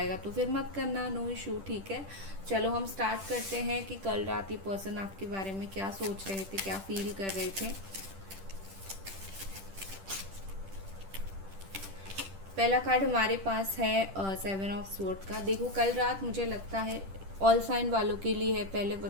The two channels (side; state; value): left; late; 10 ms